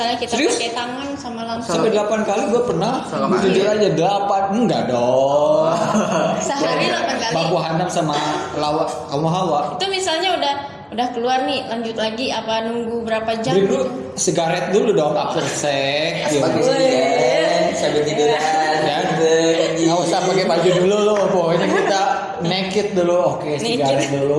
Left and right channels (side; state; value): both; identical; correlation 1.00